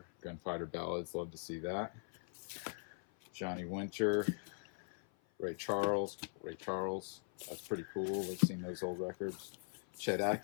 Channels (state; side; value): silent; right; 51 dB below the other